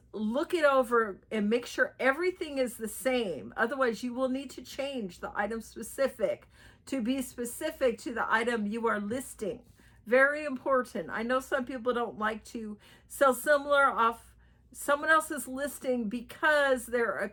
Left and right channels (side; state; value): both; identical; correlation 1.00